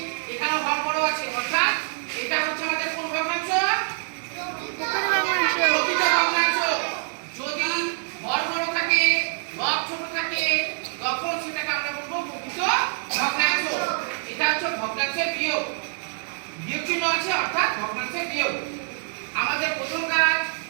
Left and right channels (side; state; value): left; silent; 62 dB below the other